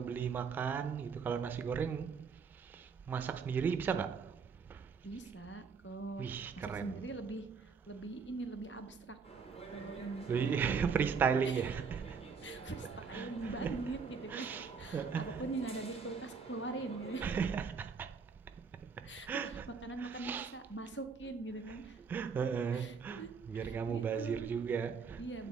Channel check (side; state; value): left; quieter; 5.6 dB